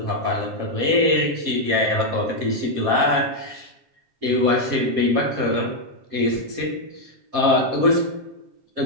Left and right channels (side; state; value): left; late; 7.5 ms